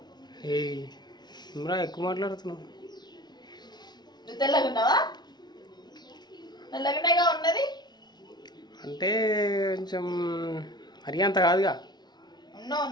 ఇమ్రా ఎక్కువ మాట్లాడుతున్నావు. నువ్వు తెల్లగా ఉన్నావా? తెల్లగానేగా ఉన్నది అంటే కొంచెం మరీ అంత కాదుగా. ఉన్నావు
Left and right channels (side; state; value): right; late; 0.20 ms